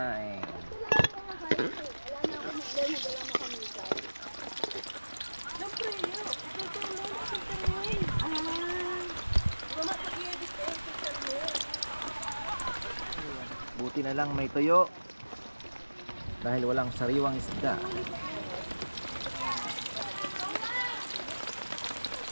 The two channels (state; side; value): inverted; both; correlation -1.00